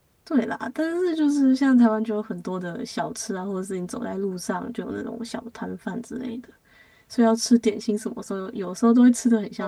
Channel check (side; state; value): both; identical; correlation 1.00